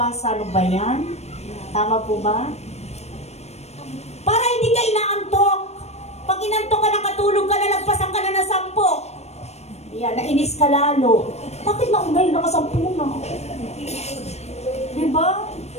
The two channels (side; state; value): right; late; 0.31 ms